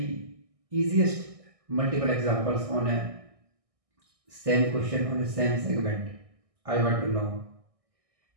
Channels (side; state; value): left; late; 1.6 ms